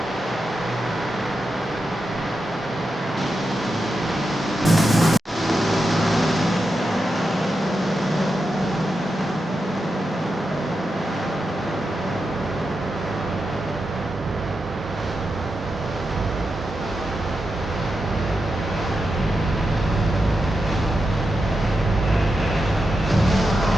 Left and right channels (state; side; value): normal; both; correlation 0.88